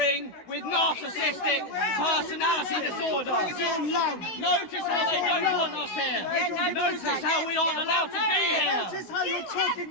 with narcissistic personality disorder. Notice how they don't want us here. Notice how we aren't allowed to be here. Notice how you're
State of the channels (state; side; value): late; right; 16 ms